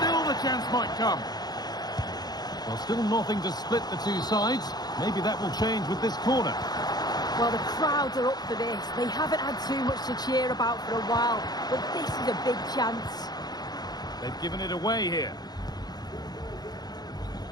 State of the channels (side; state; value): right; late; 0.19 ms